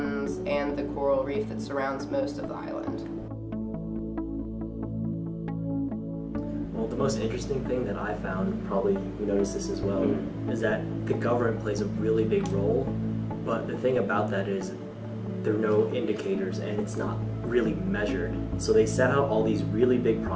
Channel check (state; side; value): identical; both; correlation 1.00